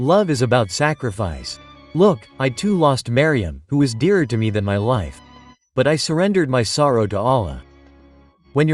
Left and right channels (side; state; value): both; identical; correlation 1.00